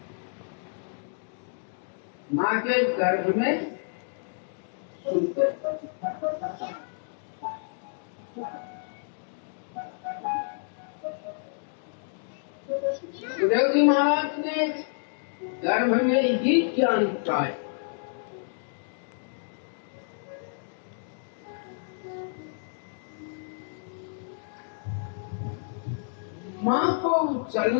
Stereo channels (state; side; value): silent; right; digital silence